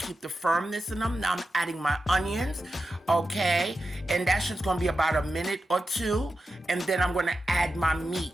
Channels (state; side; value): normal; both; correlation 0.90